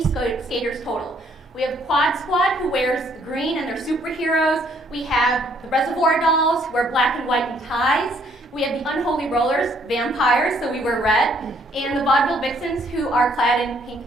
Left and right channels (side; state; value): both; normal; correlation 0.66